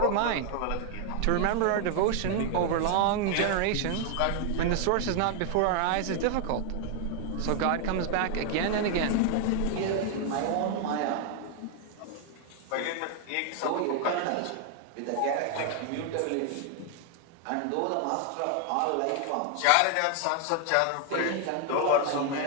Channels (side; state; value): both; different; correlation 0.00